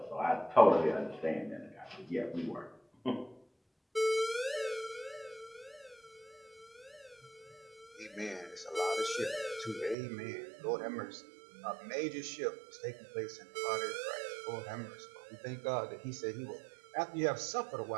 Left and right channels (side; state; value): left; drops out; at 10.0 s